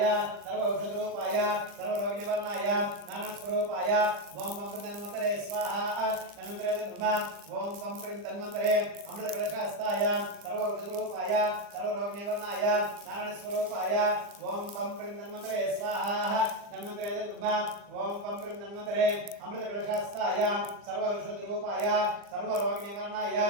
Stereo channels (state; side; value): late; left; 40 ms